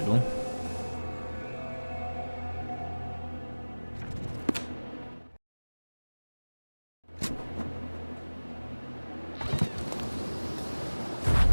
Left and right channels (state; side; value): inverted; both; correlation -1.00